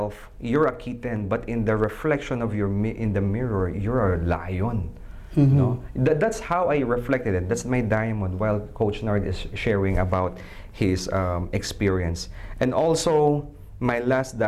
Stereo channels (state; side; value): identical; both; correlation 1.00